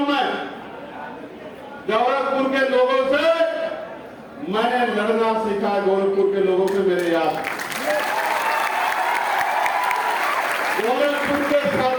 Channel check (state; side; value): identical; both; correlation 1.00